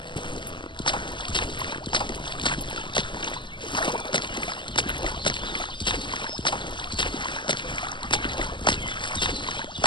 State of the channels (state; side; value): late; right; 0.23 ms